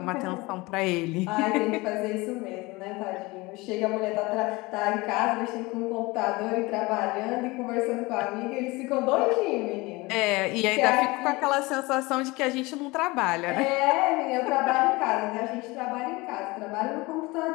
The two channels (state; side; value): quieter; right; 22.9 dB